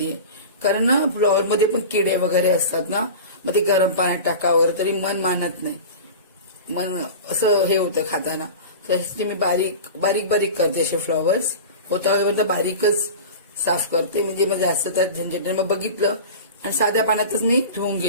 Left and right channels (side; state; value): both; inverted; correlation -0.32